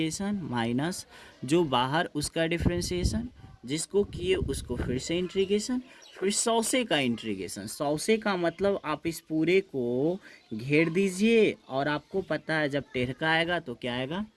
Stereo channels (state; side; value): identical; both; correlation 1.00